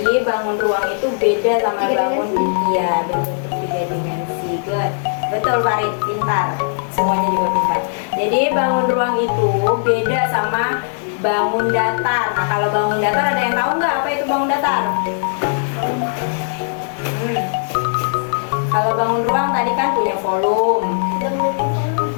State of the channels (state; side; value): silent; right; 66 dB below the other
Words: bangun ruang itu beda sama bangun ya berbentuk 3 dimensi. Good. Betul Farid, pintar. Semuanya juga pintar. Jadi bangun ruang itu beda sama bangun datar. Nah, kalau bangun datar ada yang tahu nggak apa itu bangun datar? Kalau bangun ruang tadi kan punya volume.